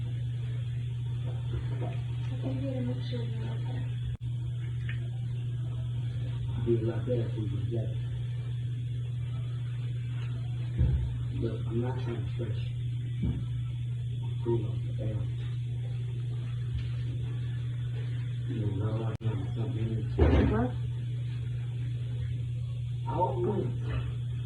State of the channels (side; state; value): both; identical; correlation 1.00